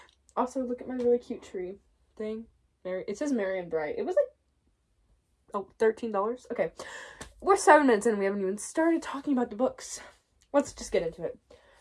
Also, look at my really cute tree thing. It says Merry and Bright. It was like, $13. Okay. We're 7 minutes in and we haven't even started talking about the books. Let's just get into it.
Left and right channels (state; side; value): identical; both; correlation 1.00